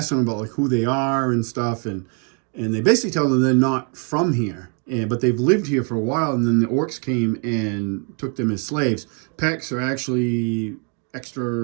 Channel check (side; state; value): left; quieter; 38.9 dB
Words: them about like who they are and stuff, and they basically tell them they're not from here, but they've lived here for a while. And then the orcs came and took them as slaves. Pecks are actually